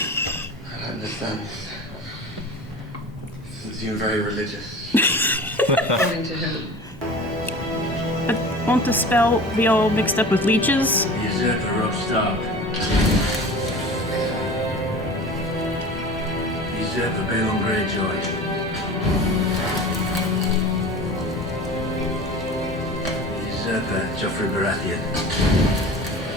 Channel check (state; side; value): normal; both; correlation 0.37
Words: don't understand. You seem very religious. According to who? But won't the spell be all mixed up with leeches? The usurper Rob Stark. The usurper Balon Greyjoy. The usurper Joffrey Baratheon.